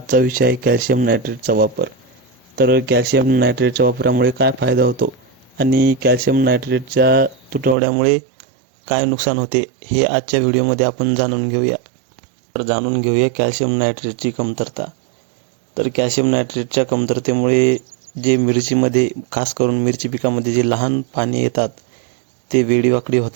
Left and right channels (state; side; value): drops out; left; at 7.8 s